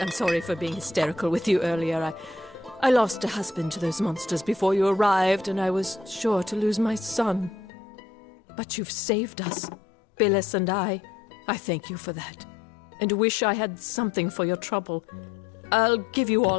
I'm sorry for being hysterical with you earlier. I lost a husband to those monsters before you arrived, and I was sure to lose my son. But you've saved us, Billis and I. I thank you for that, and wish I had something for your trouble. I'll give you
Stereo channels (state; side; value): drops out; right; at 7.7 s